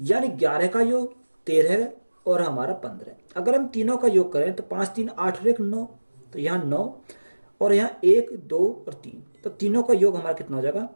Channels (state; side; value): inverted; both; correlation -1.00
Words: यानी 11 का योग 13 और हमारा 15। अगर हम तीनों का योग करें तो 5 3 8 और 1 9, तो यहाँ 9 और यहाँ 1 2 और 3, तो तीनों का योग हमारा कितना हो जाएगा,